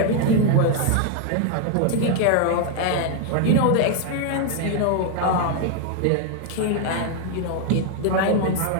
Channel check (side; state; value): both; different; correlation 0.00